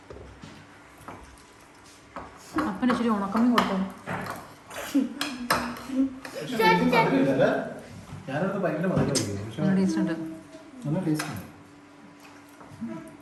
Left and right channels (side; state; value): both; identical; correlation 1.00